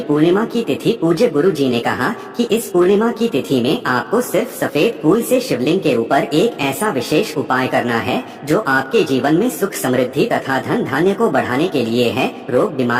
पूर्णिमा की तिथि। पूज्य गुरु जी ने कहा कि इस पूर्णिमा की तिथि में आपको सिर्फ सफेद फूल से शिवलिंग के ऊपर एक ऐसा विशेष उपाय करना है जो आपके जीवन में सुख समृद्धि तथा धन धान्य को बढ़ाने के लिए है, रोग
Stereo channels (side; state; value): both; identical; correlation 1.00